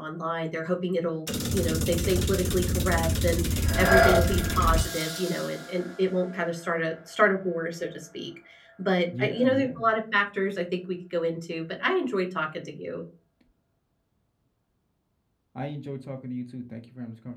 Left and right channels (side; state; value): both; identical; correlation 1.00